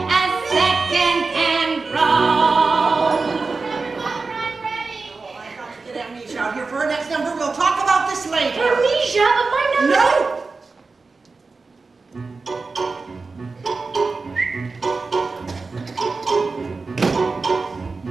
as second-hand row. Oh, I've got to get Amnesia out here for her next number. We'll talk about this later. Amnesia, but my number. No!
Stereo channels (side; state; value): left; quieter; 4.1 dB